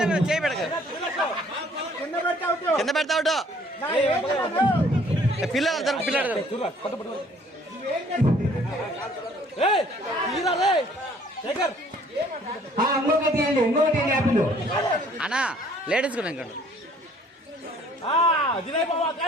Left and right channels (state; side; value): normal; both; correlation 0.58